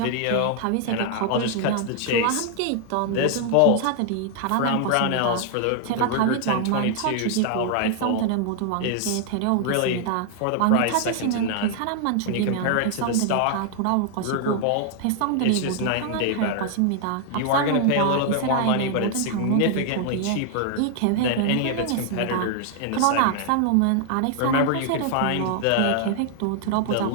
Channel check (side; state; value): both; different; correlation 0.00